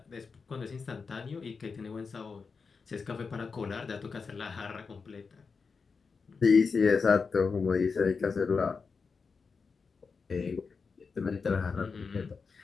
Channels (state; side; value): quieter; right; 5.1 dB